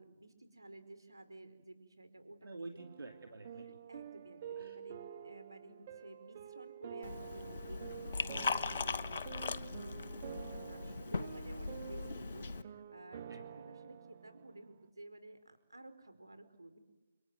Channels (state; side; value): inverted; both; correlation -0.77